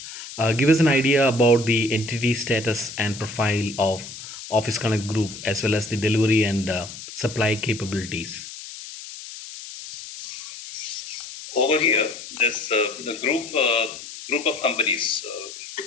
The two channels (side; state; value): left; noise; hiss, 12 dB below the sound